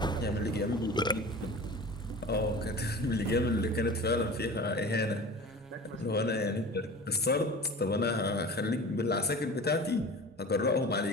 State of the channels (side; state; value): both; normal; correlation 0.36